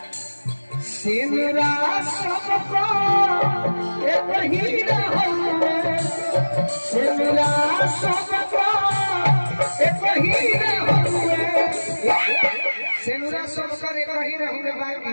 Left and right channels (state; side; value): inverted; both; correlation -1.00